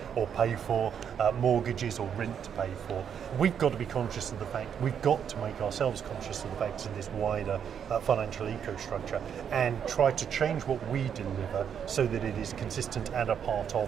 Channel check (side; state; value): left; quieter; 8.1 dB